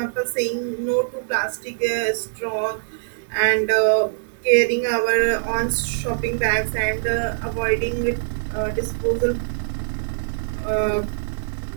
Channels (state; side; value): silent; left; digital silence